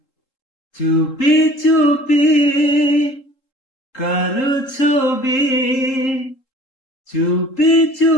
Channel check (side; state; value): right; late; 3.7 ms